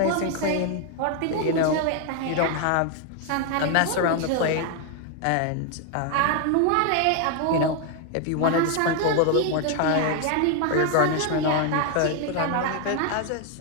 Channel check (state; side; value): different; both; correlation 0.01